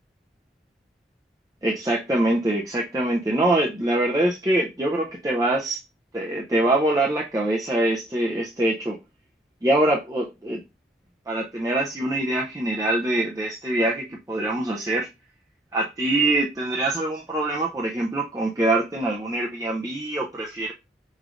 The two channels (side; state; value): both; normal; correlation 0.61